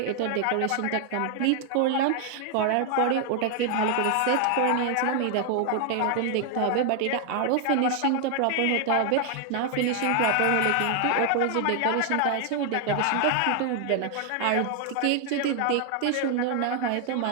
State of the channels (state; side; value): different; both; correlation 0.00